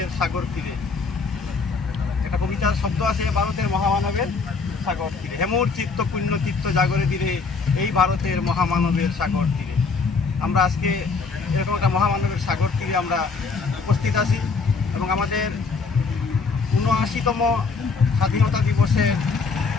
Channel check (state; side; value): quieter; right; 4.7 dB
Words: সাগর তীরে। একটা কবিতার শব্দ আছে, ভারতের মহামানবের সাগর তীরে, হেমুর চিত্ত পুণ্য চিত্ত জাগরে তীরে, এই ভারতের মহামানবের সাগর তীরে। আমরা আজকে এরকম একটা মহামানবের সাগর তীরে আমরা উপস্থিত আছি এবং আমাদের ৭৯তম স্বাধীনতা দিবসের